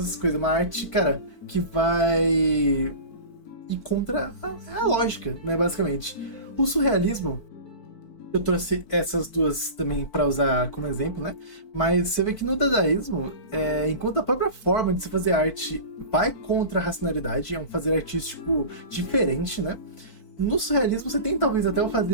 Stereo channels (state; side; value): late; right; 4.5 ms